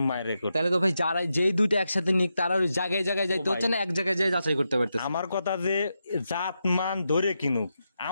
মায়ের রেকর্ড। তাহলে তো ভাই যারা যেই দুইটা একসাথে নিক, তারা ওই জায়গায় জায়গায় যাইতে হচ্ছে না, এক জায়গায় যাই যাচাই করতে পারতেছে। আমার কথা যে জাত মান ধরে কিনুক,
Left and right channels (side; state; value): both; inverted; correlation -0.86